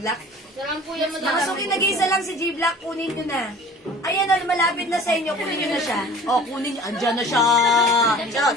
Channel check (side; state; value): both; normal; correlation 0.45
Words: Sarang po yan, Mga suki, nag-iisa lang si G-Black. Kunin nyo na. Ayan, malapit na sa inyo. Kunin nyo na siya. Oh, kunin nyo. Andyan na siya.